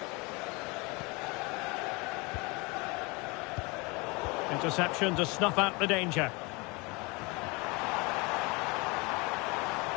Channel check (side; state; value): right; quieter; 27.0 dB